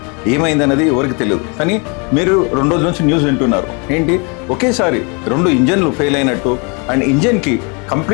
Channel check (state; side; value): quieter; right; 33.1 dB